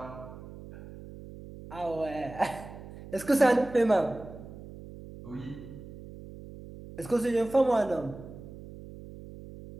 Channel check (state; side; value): noise; right; hum, 15 dB below the sound